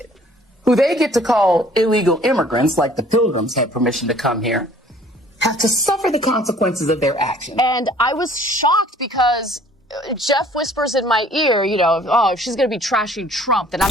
who they get to call illegal immigrants, like the Pilgrims had permission to come here, have to suffer the consequences of their actions. And I was shocked because Jeff whispers in my ear, oh, if she's going to be trashing Trump, then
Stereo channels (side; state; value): both; normal; correlation 0.55